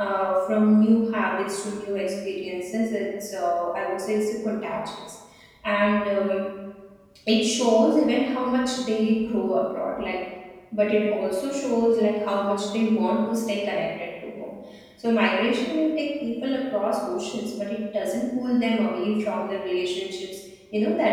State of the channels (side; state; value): both; identical; correlation 1.00